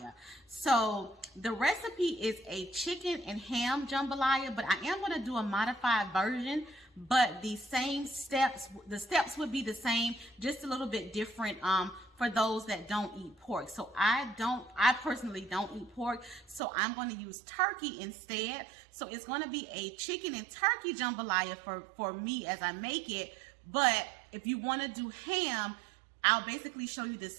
So the recipe is a chicken and ham jambalaya, but I am going to do a modified version, but the steps would be the same, just a little bit different for those that don't eat pork. So I personally don't eat pork, so I'm going to use turkey instead. So it's going to be a chicken and turkey jambalaya for me as I make it. But if you want to do ham, I'll basically show you the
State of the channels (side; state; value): left; drops out; at 16.6 s